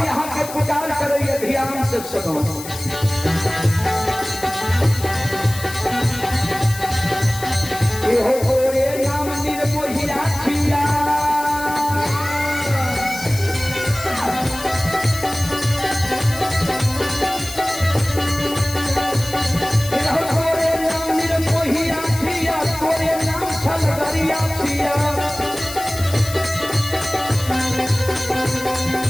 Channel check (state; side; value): noise; left; hiss, 12 dB below the sound